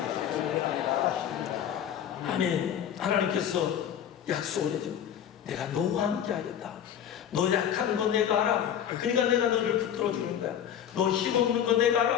아멘. 하나님께서 약속을 해줘. 내가 너와 함께 하겠다. 너 약한 거 내가 알아. 그러니까 내가 너를 붙들어 주는 거야. 너 힘없는 거 내가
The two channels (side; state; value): right; quieter; 9.5 dB